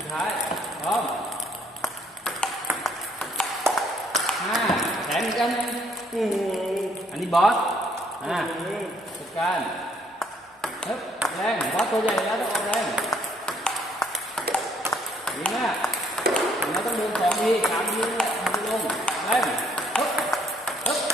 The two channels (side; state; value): both; normal; correlation 0.65